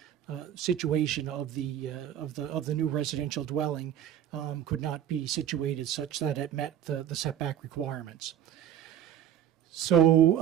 situation of the new residential dwelling could not be situated such that it met the setback requirements.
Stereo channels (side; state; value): left; quieter; 10.2 dB